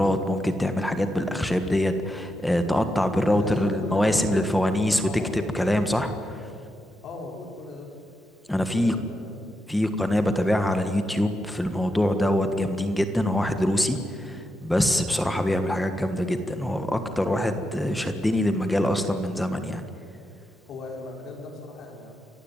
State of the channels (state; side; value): normal; both; correlation 0.85